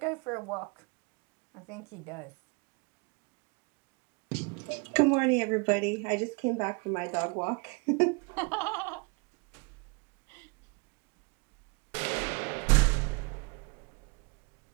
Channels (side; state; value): left; quieter; 30.7 dB